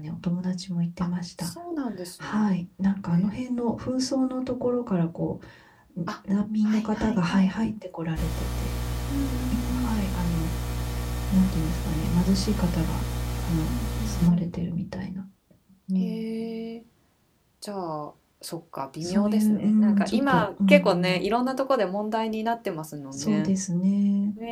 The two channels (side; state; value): both; identical; correlation 1.00